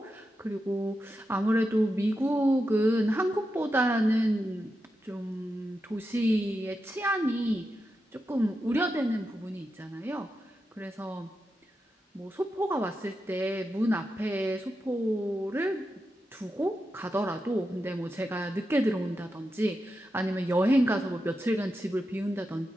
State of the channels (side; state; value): both; normal; correlation 0.88